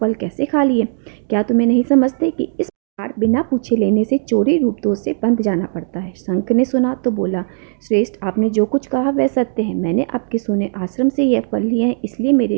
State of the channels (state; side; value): silent; left; 68 dB below the other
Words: कैसे खा लिए? क्या तुम्हें नहीं समझते कि इस बिना पूछे लेने से चोरी रूप दोष से बंध जाना पड़ता है? शंख ने सुना तो बोला, श्रेष्ठ, आपने जो कुछ कहा वह सत्य है। मैंने आपके सोने आश्रम से यह फल लिए हैं, इसलिए मेरे